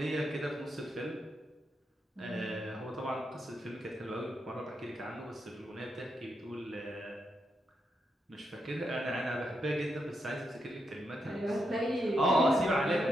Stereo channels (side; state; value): both; normal; correlation 0.83